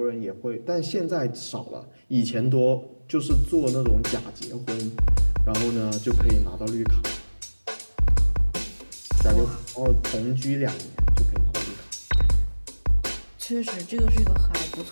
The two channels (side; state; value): both; inverted; correlation -1.00